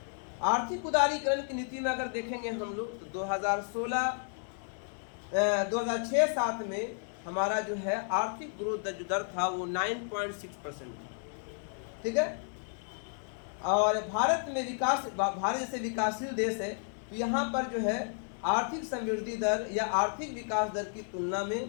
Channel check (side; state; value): right; silent; 56 dB below the other